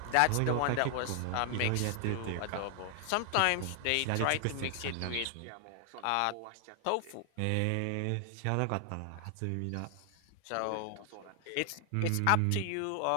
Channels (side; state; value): both; different; correlation 0.00